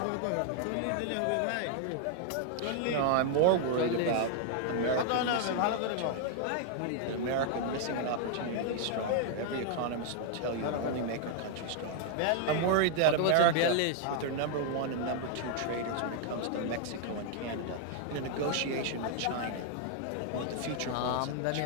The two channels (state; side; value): different; both; correlation 0.00